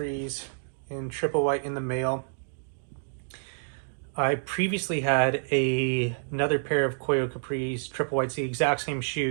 in triple white in the mail. I previously had another pair of Koio Capris triple whites, the exact same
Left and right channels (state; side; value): silent; left; digital silence